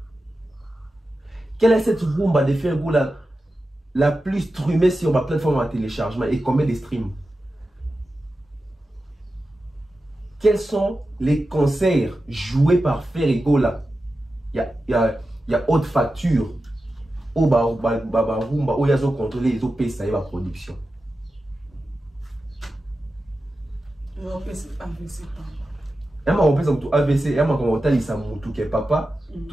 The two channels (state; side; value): normal; both; correlation 0.92